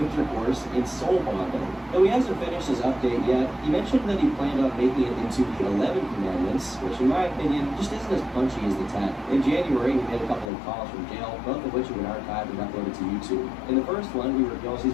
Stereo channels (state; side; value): drops out; right; at 10.5 s